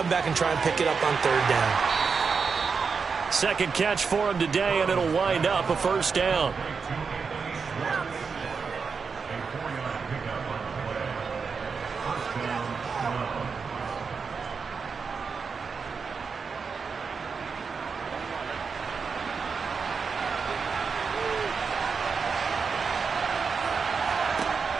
back and try and pick it up on third down. Second catch for him today, and it'll wind up a first down.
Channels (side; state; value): left; quieter; 5.4 dB